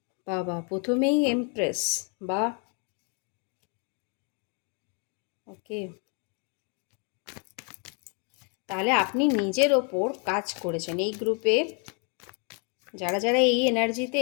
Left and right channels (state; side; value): quieter; right; 37.5 dB